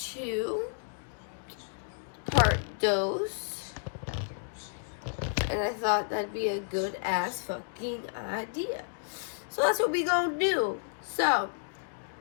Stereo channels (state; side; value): silent; right; digital silence